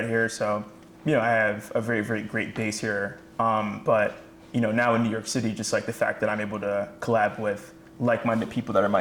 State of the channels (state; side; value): identical; both; correlation 1.00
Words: here, so, I have a very, very great base here. But, now in New York City, just like the fact that I'm able to collab with like-minded people that are